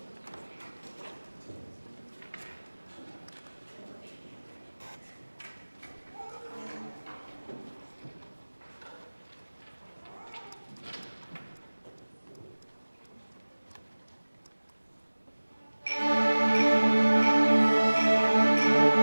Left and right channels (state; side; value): inverted; both; correlation -1.00